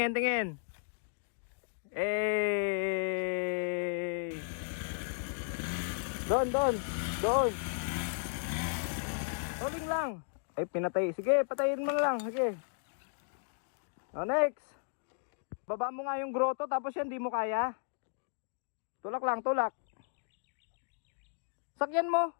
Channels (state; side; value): silent; right; digital silence